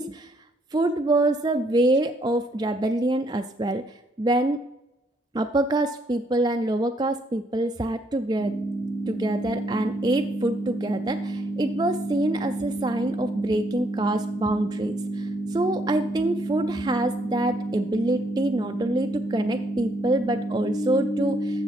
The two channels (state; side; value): normal; both; correlation 0.71